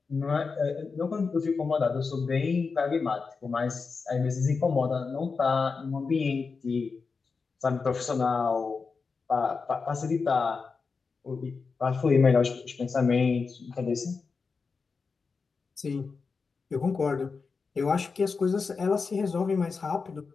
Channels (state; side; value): quieter; right; 4.8 dB